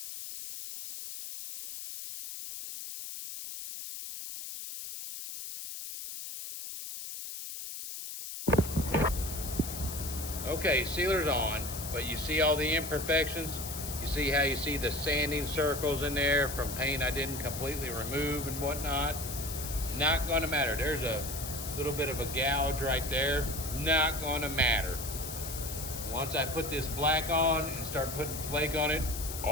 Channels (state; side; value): noise; left; hiss, 8 dB below the sound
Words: Okay, sealer's on, but you see all the imperfections? You see how you see the sanding circles in there from paint I didn't completely remove and whatnot? Not gonna matter. There's a little bit of a gouge right there. Not gonna matter. Once I put this black on and start putting flake on it,